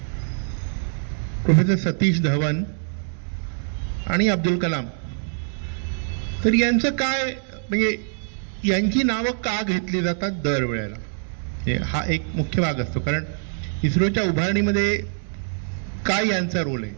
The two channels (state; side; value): silent; left; digital silence